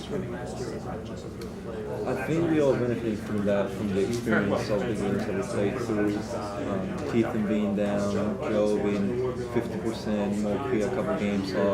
you? I think we all benefited from that, from the experience of the games that we played through. Keithan being down, Joe being 50%, Moki a couple games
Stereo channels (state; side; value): identical; both; correlation 1.00